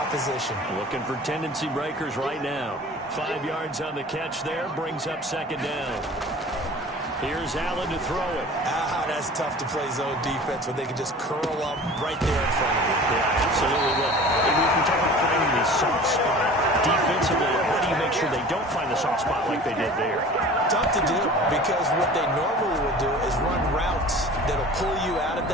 Looking for tendency breakers right now. 5 yards on the catch there, brings up second down. Here's Allen to throw it. That's tough to play zone defense when they can just curl up right there in front of you. Yeah, absolutely. Well, we can talk about finding the soft spot defensively. How do you make sure they don't find the soft spot like they did there? Tough to do, because what they normally will do is run routes that'll pull you out of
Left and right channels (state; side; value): normal; both; correlation 0.42